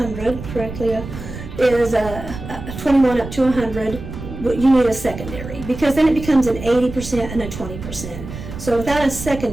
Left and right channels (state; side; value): noise; right; rumble, 10 dB below the sound